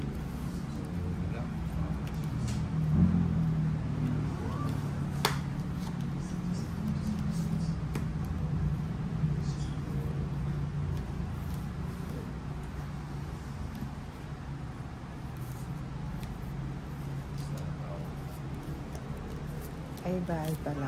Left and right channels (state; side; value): identical; both; correlation 1.00